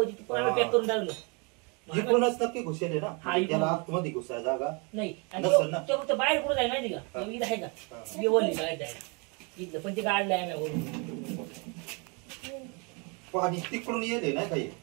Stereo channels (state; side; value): quieter; left; 32.4 dB